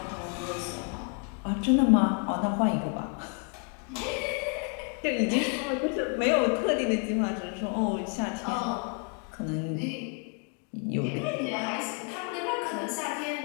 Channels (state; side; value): quieter; right; 39.8 dB